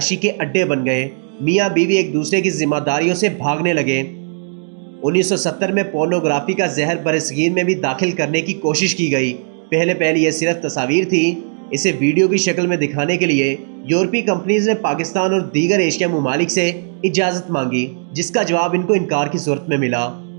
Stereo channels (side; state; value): left; silent; digital silence